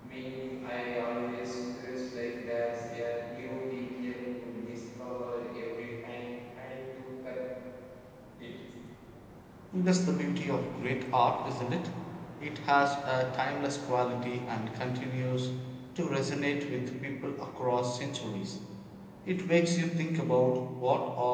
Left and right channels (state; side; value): identical; both; correlation 1.00